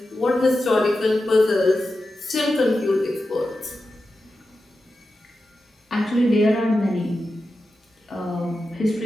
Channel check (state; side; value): normal; both; correlation 0.91